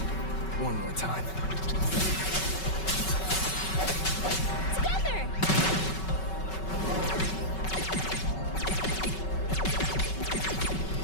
One more time. Together!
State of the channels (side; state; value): right; late; 5.3 ms